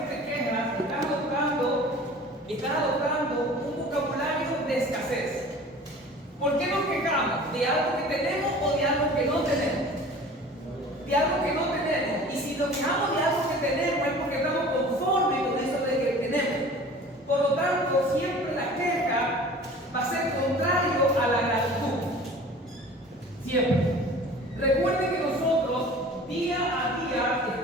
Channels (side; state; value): both; normal; correlation 0.43